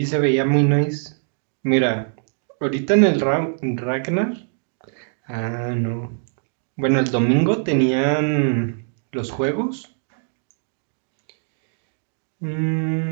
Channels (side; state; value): left; silent; digital silence